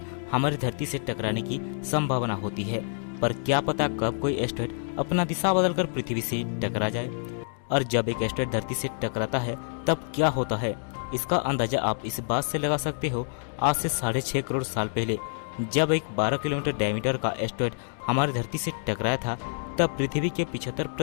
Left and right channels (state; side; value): silent; right; digital silence